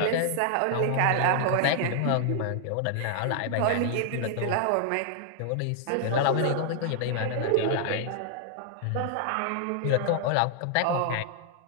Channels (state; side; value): different; both; correlation 0.00